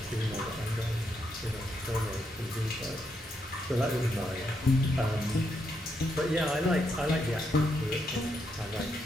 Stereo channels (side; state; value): both; normal; correlation 0.79